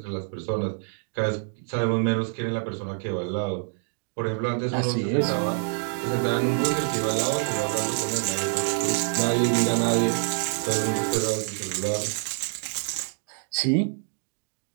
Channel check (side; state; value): left; silent; 61 dB below the other